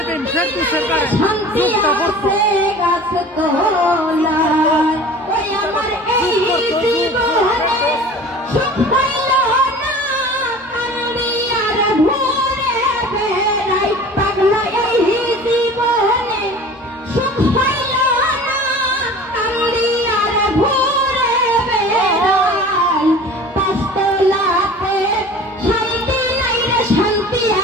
শান্তি আছে গাছ তোলায়। ওই আমার এই জীবনে সুখ পাইল না, কান্দি আর ঘুরে বেড়াই। পাগলা এই জীবনে সুখ পাইল না, কান্দি আর ঘুরে বেড়াই। পাঁচতলাতে শান্তি নাই রে, শান্তি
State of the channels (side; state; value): both; normal; correlation 0.41